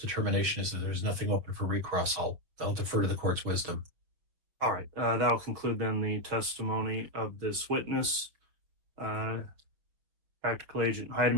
is that there's nothing open for recross, I'll defer to the court's wisdom. All right. That'll conclude then the testimony of this witness. Practical Agent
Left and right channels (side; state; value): left; late; 6.0 ms